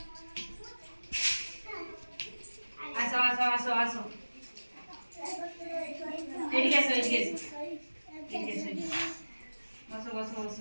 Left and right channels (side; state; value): both; inverted; correlation -1.00